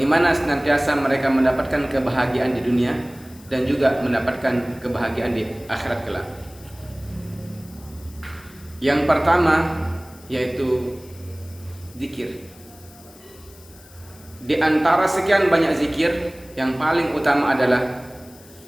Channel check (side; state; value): left; noise; hiss, 24 dB below the sound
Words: senantiasa mereka mendapatkan kebahagiaan di dunia dan juga mendapatkan kebahagiaan di akhirat kelak. Yang pertama yaitu zikir. Di antara sekian banyak zikir, yang paling utama adalah